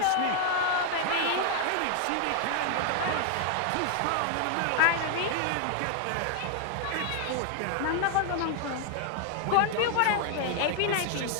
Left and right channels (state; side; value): different; both; correlation 0.00